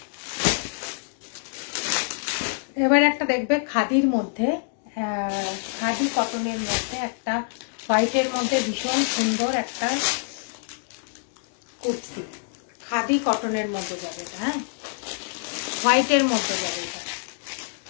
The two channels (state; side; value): silent; right; digital silence